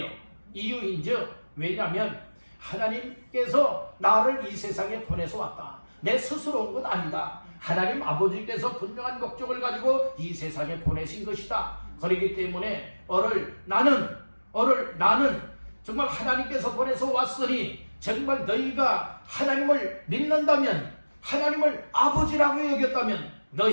이유인즉 왜냐하면 하나님께서 나를 이 세상에 보내서 왔다. 내 스스로 온 건 아니다. 하나님 아버지께서 분명한 목적을 가지고 이 세상에 보내신 것이다. 그렇기 때문에 나는 정말 하나님께서 보내서 왔으니 정말 너희가 하나님을 믿는다면, 하나님을 아버지라고 여겼다면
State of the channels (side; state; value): both; inverted; correlation -1.00